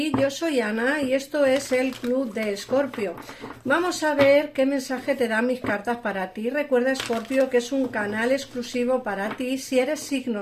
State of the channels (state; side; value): identical; both; correlation 1.00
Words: Yo soy Ana y esto es el Club de Escorpio. Vamos a ver qué mensaje te dan mis cartas para ti. Recuerda, Escorpio, que es un canal exclusivo para ti si eres